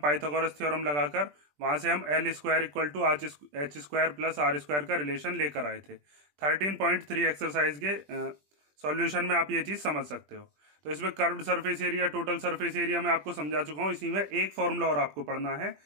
थ्योरम लगाकर वहां से हम l square equal to h square plus r square का रिलेशन लेकर आए थे। 13.3 एक्सरसाइज के सॉल्यूशन में आप ये चीज समझ सकते हो। तो इसमें curved surface area, total surface area मैं आपको समझा चुका हूं। इसी में एक फॉर्मूला और आपको पढ़ना है,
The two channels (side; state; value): left; late; 20 ms